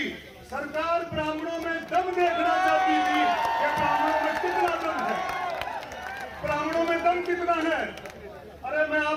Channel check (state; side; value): identical; both; correlation 1.00